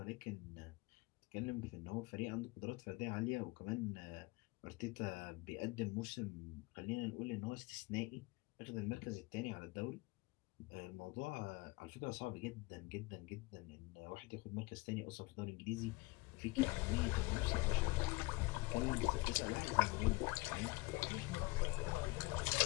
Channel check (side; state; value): right; quieter; 23.9 dB